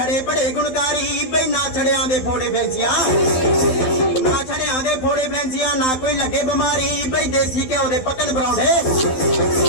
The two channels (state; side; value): late; right; 12 ms